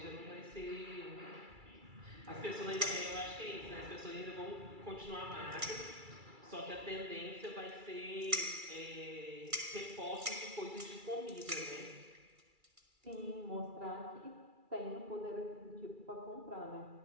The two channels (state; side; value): late; left; 2.3 ms